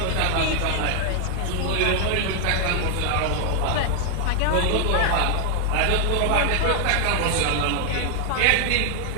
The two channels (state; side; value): different; both; correlation 0.00